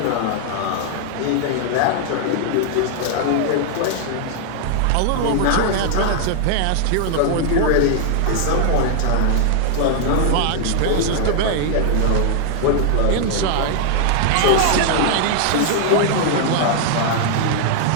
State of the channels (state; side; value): different; both; correlation -0.01